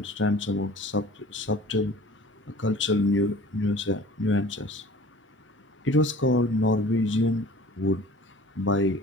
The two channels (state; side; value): normal; both; correlation 0.45